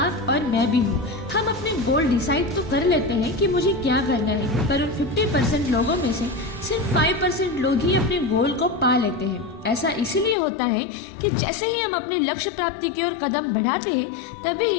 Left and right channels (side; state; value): right; drops out; at 10.4 s